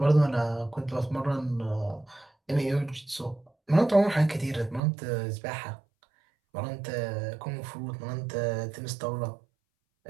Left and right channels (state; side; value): drops out; left; at 4.8 s